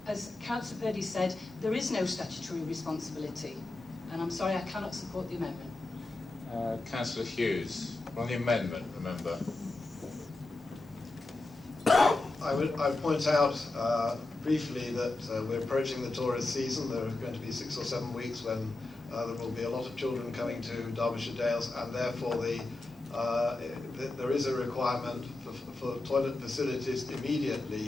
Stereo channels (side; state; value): right; quieter; 3.0 dB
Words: as Councillor Purdy said, there is no statutory responsibility. And I'm sorry, I cannot support the amendment. Councillor Hughes, on the amendment, remember. I would point out briefly that we're approaching the tourist season. There are going to be 6 or 7 weeks when there will be a lot of children coming to Derbyshire Dales, and therefore there is a requirement for toilet facilities